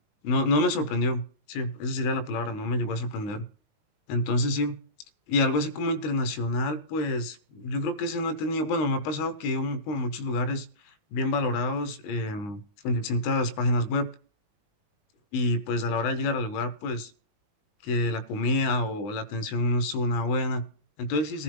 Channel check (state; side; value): late; right; 19 ms